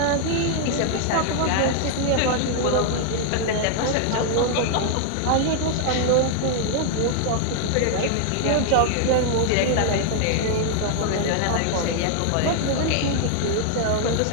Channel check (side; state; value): both; different; correlation -0.01